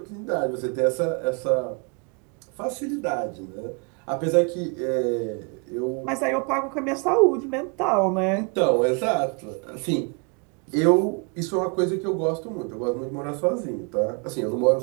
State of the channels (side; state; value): left; quieter; 34.7 dB